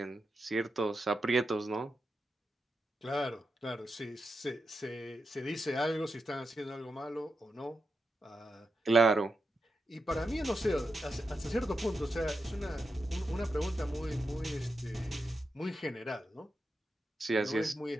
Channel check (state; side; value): normal; both; correlation 0.87